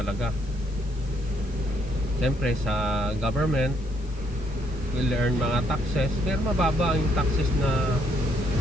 Siyempre sa government will earn mga taxes, pero mababa ang taxes na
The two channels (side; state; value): left; noise; hiss, 26 dB below the sound